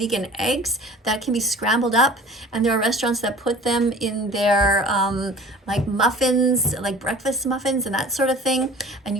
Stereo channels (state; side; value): normal; both; correlation 0.44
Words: eggs that can be scrambled up, and there are restaurants that put them in their like muffins, like breakfast muffins and that sort of thing. And